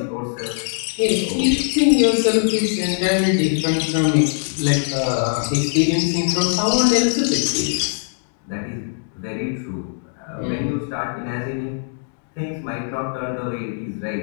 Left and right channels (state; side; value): silent; right; digital silence